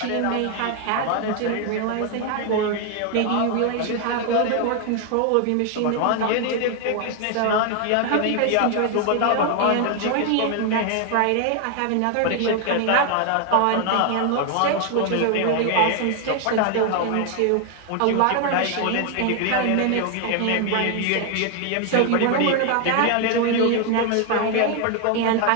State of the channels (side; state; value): both; different; correlation 0.00